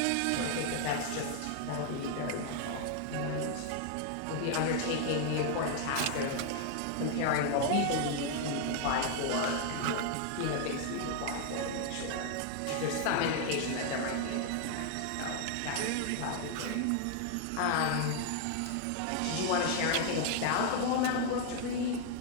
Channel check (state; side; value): different; both; correlation 0.00